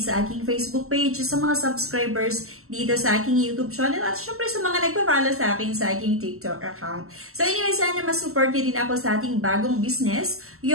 sa aking Facebook page, sa mga subscribers dito sa aking YouTube channel, at syempre sa mga nagpa-follow sa akin sa aking TikTok account. So anyway, sana mas-support nyo din ako sa ating bagong business,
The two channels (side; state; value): left; late; 0.63 ms